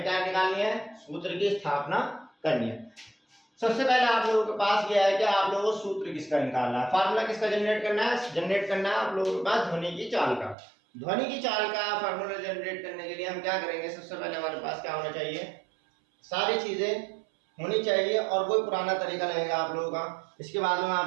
क्या निकालनी है, सूत्र की स्थापना करनी है। सबसे पहले आप लोगों के पास यह है कि आप लोगों को सूत्र किसका निकालना है, फार्मूला किसका जनरेट करना है। जनरेट करना है आप लोगों के पास ध्वनि की चाल का। ध्वनि की चाल का फार्मूला जनरेट करने के लिए हम क्या करेंगे, सबसे पहले हमारे पास क्या होना चाहिए, सारी चीजें होनी चाहिए और कोई पुराना तरीका लगेगा आप लोगों का। इसके बाद में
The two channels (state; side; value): drops out; left; at 10.6 s